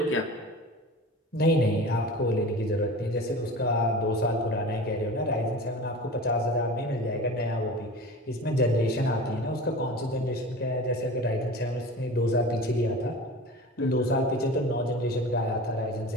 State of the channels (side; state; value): both; normal; correlation 0.35